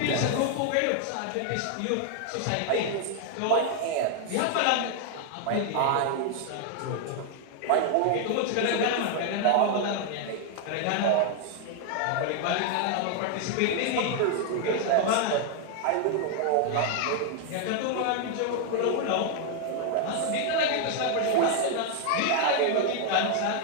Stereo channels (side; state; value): both; different; correlation 0.00